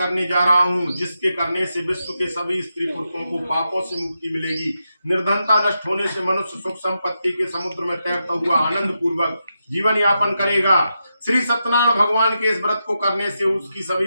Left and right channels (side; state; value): both; inverted; correlation -0.86